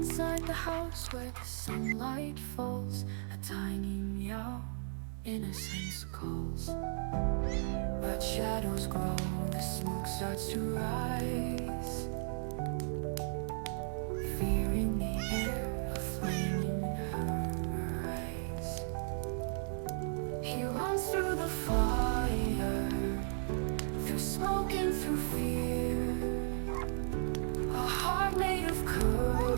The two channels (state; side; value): silent; left; digital silence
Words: the house where the sunlight falls, a tiny meow, innocence calls. But shadows grow, the smoke starts to rise. Fear in the air, a flame in her eyes. He runs through the fire, through smoke and through fear. A heart made of